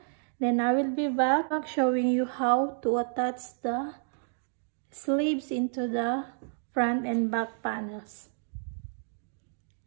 Then I will be back showing you how to attach the sleeves into the front and back panels.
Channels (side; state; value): left; silent; digital silence